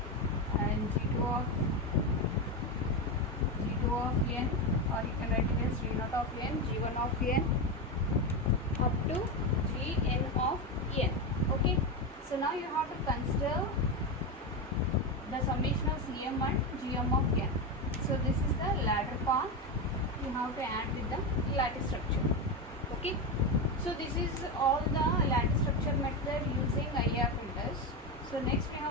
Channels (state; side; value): normal; both; correlation 0.13